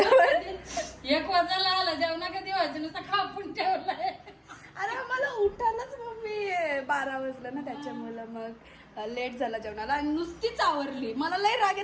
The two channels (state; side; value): identical; both; correlation 1.00